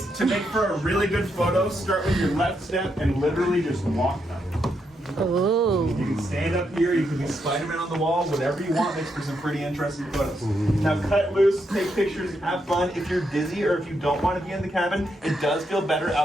To make for a really good photo, start with your left step and literally just walk up. Oh. You can stand up here, you can be Spider-Man on the wall, whatever you want makes for some pretty interesting photos. Now cut loose, take pictures, have fun. If you're dizzy or if you don't want to be in the cabin, it does feel better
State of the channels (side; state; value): both; normal; correlation 0.80